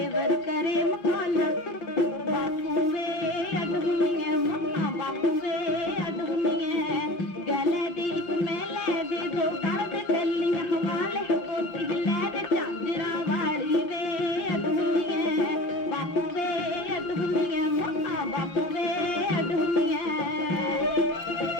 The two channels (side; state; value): right; late; 5.7 ms